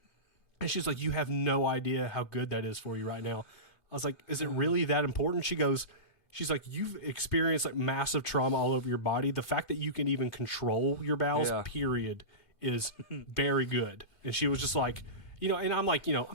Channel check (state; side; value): late; right; 2.5 ms